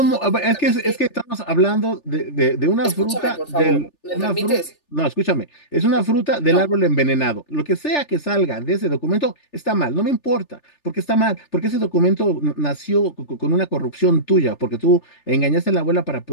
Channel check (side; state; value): right; late; 3.4 ms